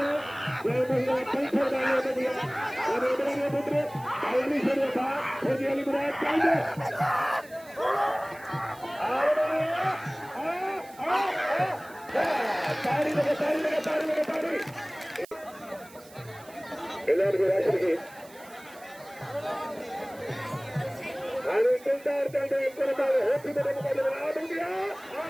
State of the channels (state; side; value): noise; right; hiss, 23 dB below the sound